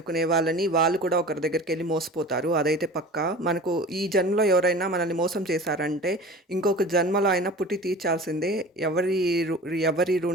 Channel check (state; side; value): normal; both; correlation 0.38